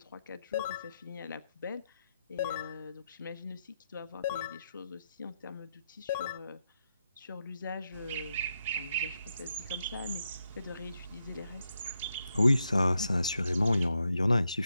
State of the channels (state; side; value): inverted; both; correlation -0.84